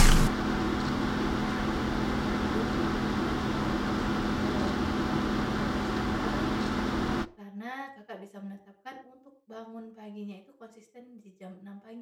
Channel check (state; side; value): identical; both; correlation 1.00